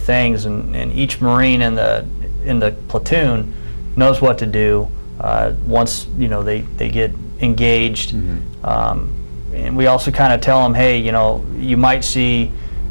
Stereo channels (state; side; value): inverted; both; correlation -1.00